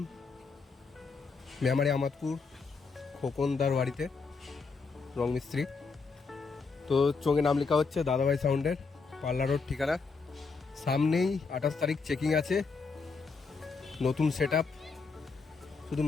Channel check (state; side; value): quieter; right; 4.7 dB